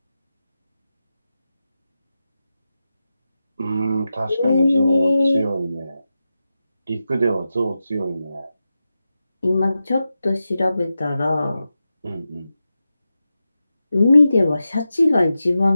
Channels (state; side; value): inverted; both; correlation -0.91